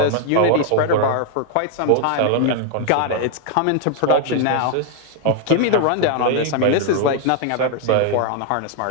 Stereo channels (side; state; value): both; different; correlation 0.00